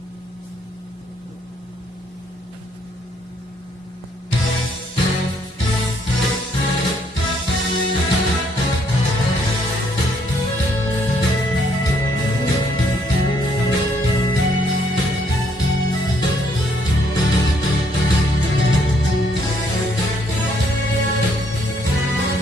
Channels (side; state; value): both; normal; correlation 0.69